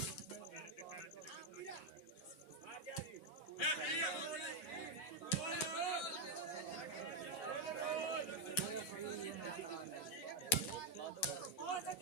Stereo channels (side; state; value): right; late; 12 ms